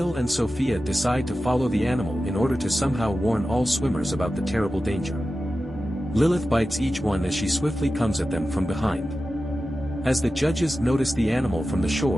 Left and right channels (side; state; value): right; noise; hum, 21 dB below the sound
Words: and Sophia decide to follow the animal in order to somehow warn all swimmers about the terrible danger. Lilith bites each one as she swiftly comes at them from behind. As the judges notice the animal from the